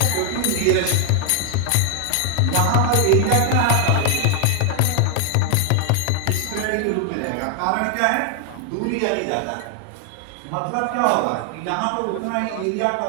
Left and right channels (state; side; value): different; both; correlation 0.00